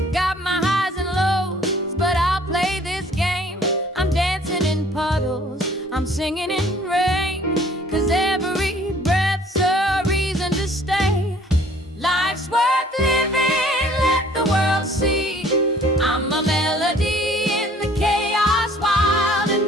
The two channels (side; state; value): both; normal; correlation 0.55